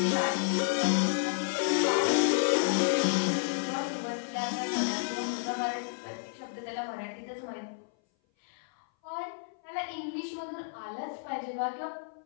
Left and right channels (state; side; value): silent; right; 57 dB below the other